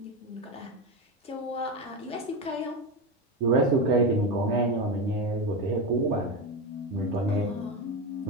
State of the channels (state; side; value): normal; both; correlation 0.17